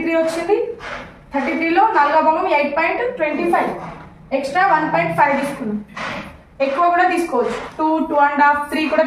వచ్చింది. 33లో 4వ భాగం 8.25, ఎక్స్ట్రా 1.5 తీసుకున్నాం. ఎక్కువ కూడా తీసుకోవచ్చు, 2, 2.5, 3 కూడా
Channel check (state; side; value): identical; both; correlation 1.00